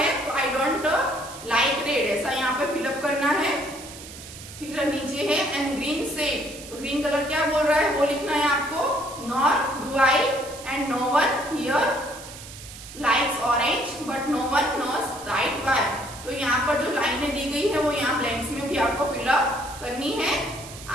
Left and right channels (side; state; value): right; noise; hiss, 15 dB below the sound